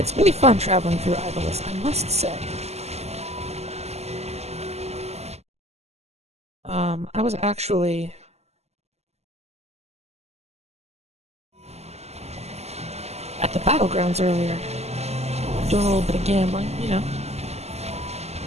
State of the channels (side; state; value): left; late; 0.31 ms